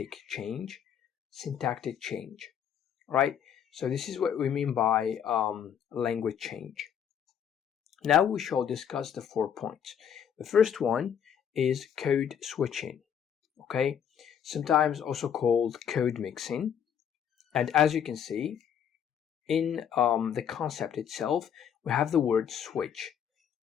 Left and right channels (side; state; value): right; quieter; 8.5 dB